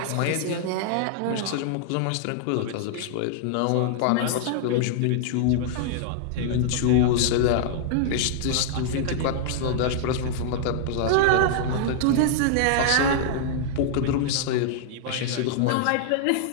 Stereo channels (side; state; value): both; different; correlation -0.01